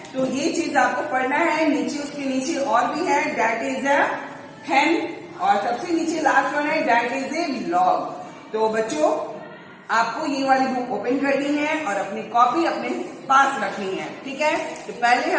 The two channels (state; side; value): identical; both; correlation 1.00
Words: तो ये चीज आपको पढ़ना है। नीचे उसके नीचे और भी है, डैट इज अ हेन और सबसे नीचे लास्ट वन है डैट इज ए लॉग। तो बच्चों आपको ये वाली बुक ओपन करनी है और अपनी कॉपी अपने पास रखनी है। ठीक है, तो पहले